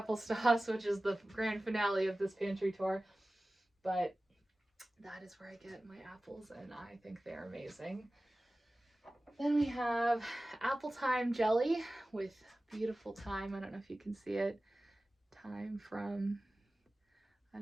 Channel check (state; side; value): normal; both; correlation 0.97